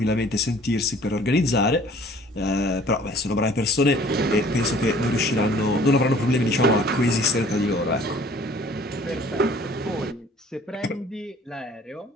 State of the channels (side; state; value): both; normal; correlation 0.53